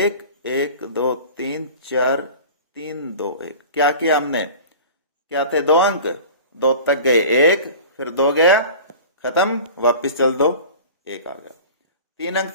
1 2 3 4 3 2 1। क्या किया हमने, क्या थे 2 अंक, 2 तक गए, 1 फिर 2 गया, खत्म, वापिस चल दो, 1 आ गया। 3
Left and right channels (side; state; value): both; inverted; correlation -0.38